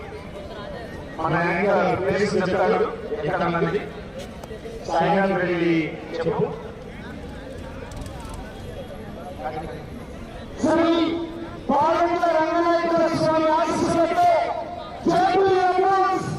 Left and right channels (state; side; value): identical; both; correlation 1.00